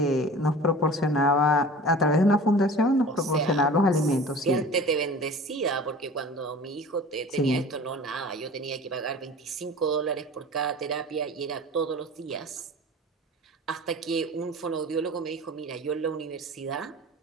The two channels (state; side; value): normal; both; correlation 0.40